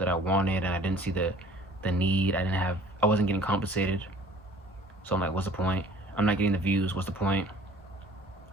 I wanted, and I didn't see the need. I wasn't getting compensated. So I'm like, what's the point? I'm not getting the views. What's the point?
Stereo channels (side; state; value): both; normal; correlation 0.51